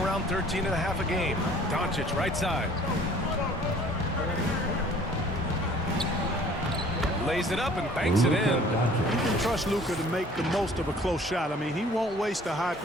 13.5 a game. Doncic right side. Lays it up and banks it in. You can trust Luka to make the most of a close shot. I mean, he won't waste a high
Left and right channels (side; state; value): both; normal; correlation 0.53